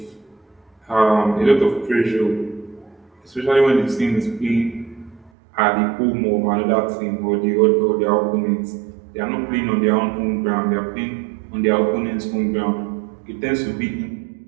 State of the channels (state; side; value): drops out; left; at 5.3 s